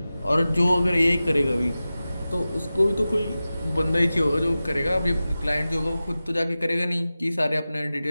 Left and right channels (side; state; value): both; inverted; correlation -0.95